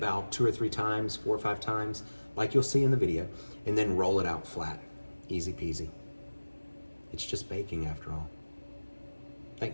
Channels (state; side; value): inverted; both; correlation -1.00